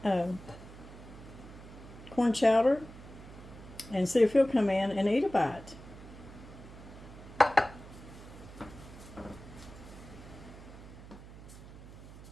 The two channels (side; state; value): right; noise; hum, 16 dB below the sound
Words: corn chowder and see if he'll come in and eat a bite.